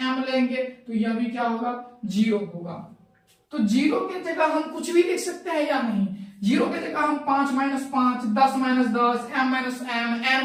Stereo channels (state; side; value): identical; both; correlation 1.00